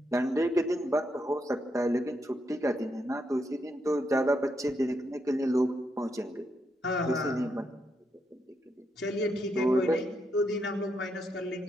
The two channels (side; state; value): both; normal; correlation 0.80